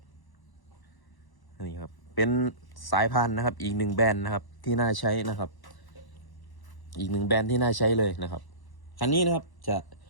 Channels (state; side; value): late; right; 1.0 ms